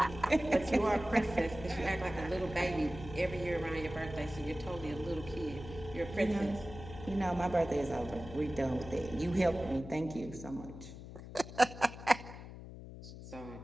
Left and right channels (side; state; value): left; noise; hum, 13 dB below the sound